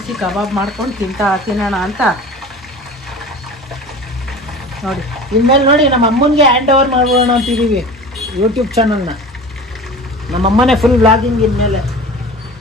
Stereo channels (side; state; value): both; normal; correlation 0.37